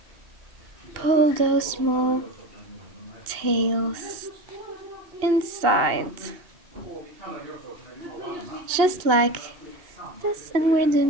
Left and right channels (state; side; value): late; left; 2.8 ms